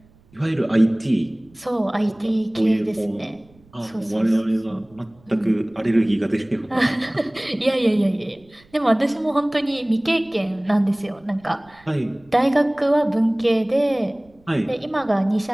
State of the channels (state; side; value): noise; right; rumble, 30 dB below the sound